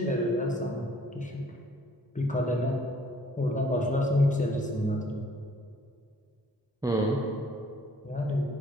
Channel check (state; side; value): normal; both; correlation 0.60